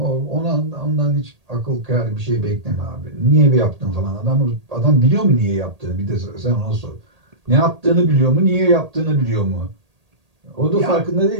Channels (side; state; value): left; late; 1.8 ms